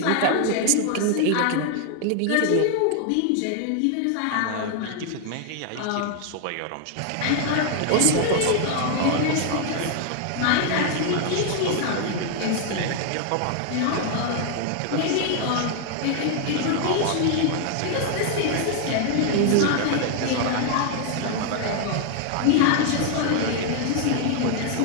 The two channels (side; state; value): both; different; correlation 0.00